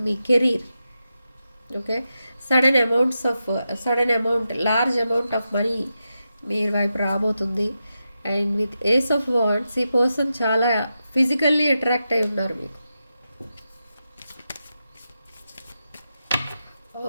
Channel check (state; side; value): inverted; both; correlation -0.89